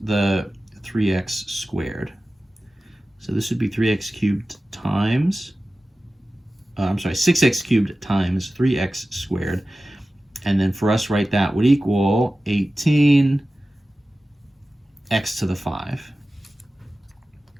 the 3x squared. So this would be 3x cubed times, 6x cubed times 3x squared. And then for us, right, that would equal 18x to the 5.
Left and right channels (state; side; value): normal; both; correlation 0.95